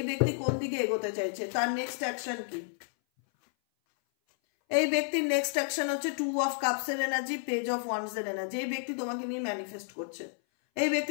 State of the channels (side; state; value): right; silent; 57 dB below the other